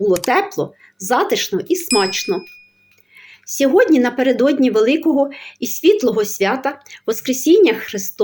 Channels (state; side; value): identical; both; correlation 1.00